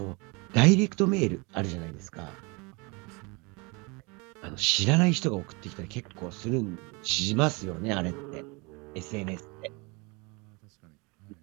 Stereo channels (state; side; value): quieter; left; 28.5 dB